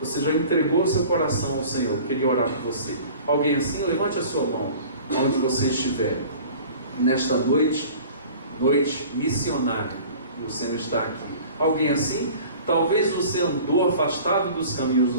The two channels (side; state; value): both; inverted; correlation -0.44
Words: já entregou o seu coração ao Senhor, queria orar por você. Alguém assim, levante a sua mão, onde você estiver. Nesta noite missionária, e o Senhor está aqui. Alguém assim? Talvez você andou afastado dos caminhos